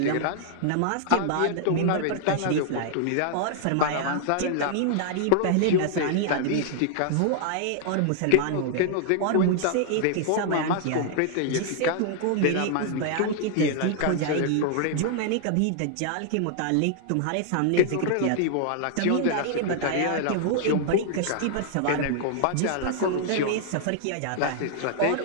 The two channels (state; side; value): different; both; correlation 0.00